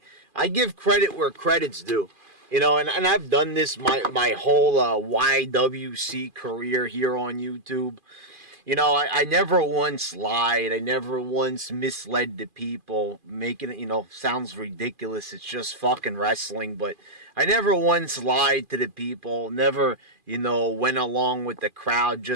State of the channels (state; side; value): late; left; 2.4 ms